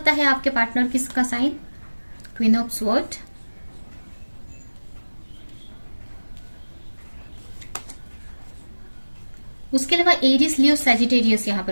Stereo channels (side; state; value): both; inverted; correlation -1.00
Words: है आपके पार्टनर किसका साइन, क्वीन ऑफ स्वॉर्ड, उसके अलावा एरिस, लियो, सैजिटेरियस यहाँ